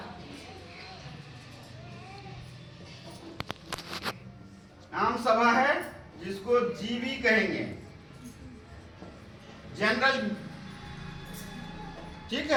आम सभा है जिसको जीवी कहेंगे, जनरल, ठीक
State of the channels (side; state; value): both; identical; correlation 1.00